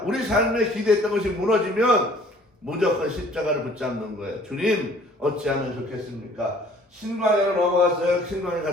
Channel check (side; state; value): both; normal; correlation 0.55